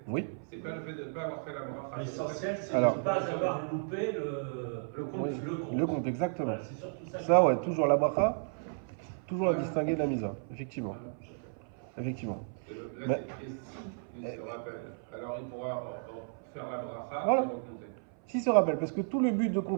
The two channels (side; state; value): left; silent; 56 dB below the other